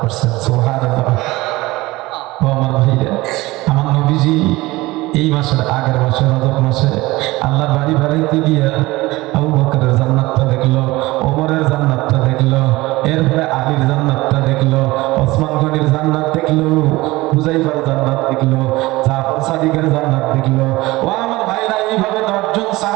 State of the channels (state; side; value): quieter; left; 19.9 dB